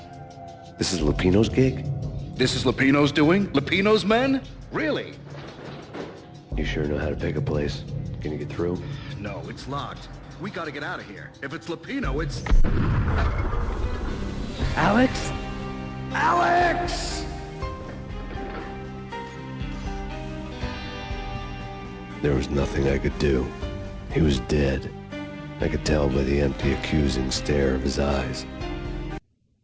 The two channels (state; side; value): identical; both; correlation 1.00